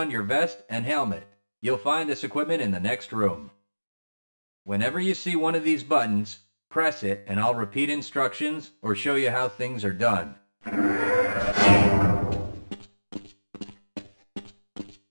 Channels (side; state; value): both; inverted; correlation -1.00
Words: your vest and helmet. You'll find this equipment in the next room. Whenever you see one of these buttons, press it and I'll repeat instructions or show you how things are done.